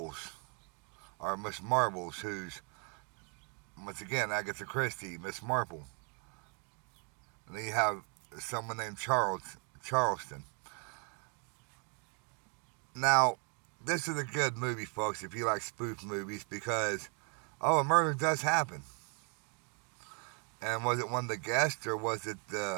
who's, once again, Agatha Christie, Miss Marple. And then you have someone named Charleston. Now, this is a good movie, folks, if you like spoof movies, because, a murder does happen. And was it one of the guests, or was it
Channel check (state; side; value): quieter; left; 37.3 dB